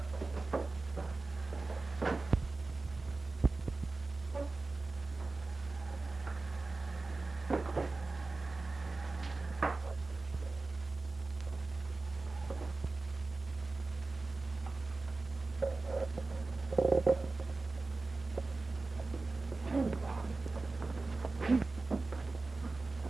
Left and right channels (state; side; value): quieter; left; 3.6 dB